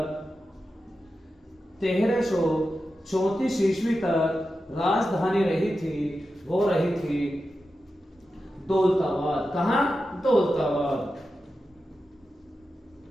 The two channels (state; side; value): normal; both; correlation 0.91